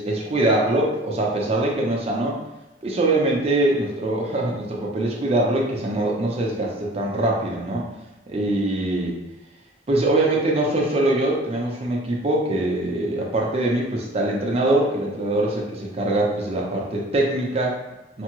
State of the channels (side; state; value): both; normal; correlation 0.46